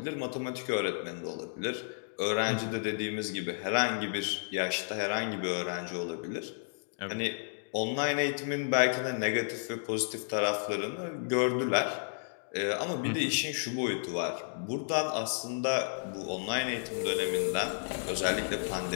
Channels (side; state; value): right; silent; digital silence